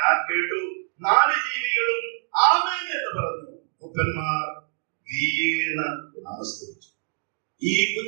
ഞാൻ കേട്ടു. 4 ജീവികളും ആമേൻ എന്ന് പറഞ്ഞു. മൂപ്പന്മാർ വീണ് നമസ്കരിച്ചു. ഈ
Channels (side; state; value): left; silent; digital silence